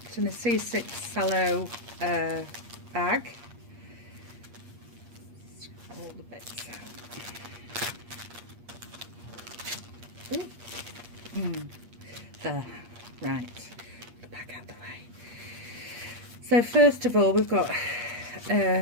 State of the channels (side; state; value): left; late; 8.5 ms